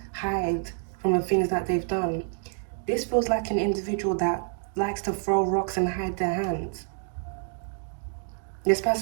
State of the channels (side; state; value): left; silent; 58 dB below the other